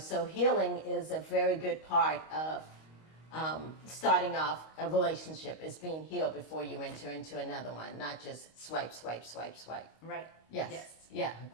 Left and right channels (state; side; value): late; right; 25 ms